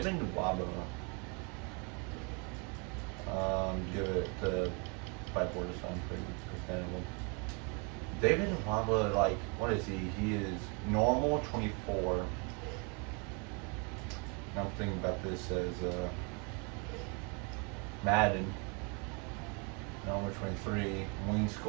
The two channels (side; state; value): left; quieter; 33.7 dB